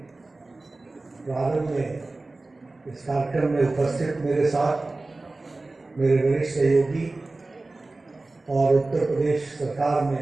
प्रारंभ में इस कार्यक्रम में उपस्थित मेरे साथ मेरे वरिष्ठ सहयोगी और उत्तर प्रदेश सरकार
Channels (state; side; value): quieter; left; 3.2 dB